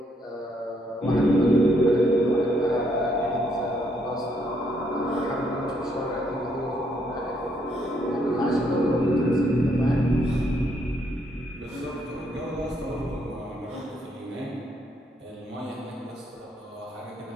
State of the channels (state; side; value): normal; both; correlation 0.73